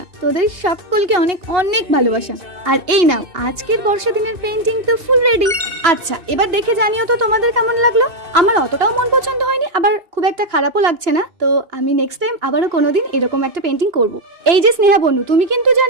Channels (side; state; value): left; late; 2.8 ms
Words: তোদের সকলকে অনেক অনেক ভালোবাসা। আর এই নাও আজকের বর্ষা দিনের পেইন্টিং তো ফুল রেডি। আচ্ছা এবার দেখে জানিও তো তোমাদের কেমন লাগলো। আমার অতটাও মন পছন্দ হয়নি, আবার খুব একটা খারাপও লাগছে না। তো আমি নেক্সট টাইম আবারও কোনোদিন এরকম একটা পেইন্টিং করব। এই যে স্নেহা বনু, তুমি কিন্তু